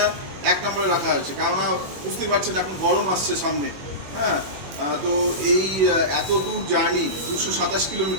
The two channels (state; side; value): late; left; 21 ms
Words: 1 নম্বরে রাখা হয়েছে। কেননা বুঝতেই পারছেন এখন গরম আসছে সামনে, হ্যাঁ। তো এই এত দূর জার্নি 227